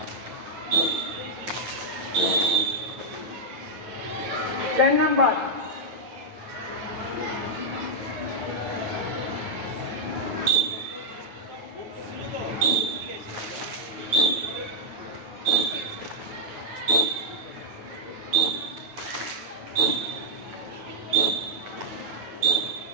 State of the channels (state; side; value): late; left; 9.0 ms